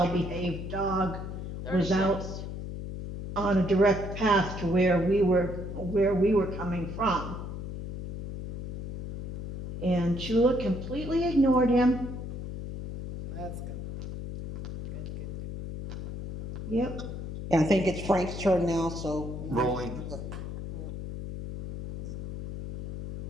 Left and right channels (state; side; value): noise; left; hum, 7 dB below the sound